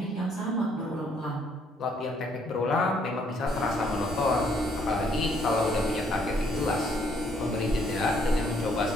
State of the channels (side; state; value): both; normal; correlation 0.68